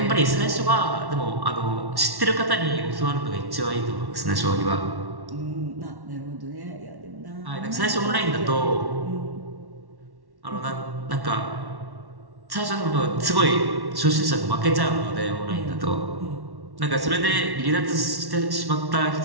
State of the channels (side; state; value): left; late; 1.1 ms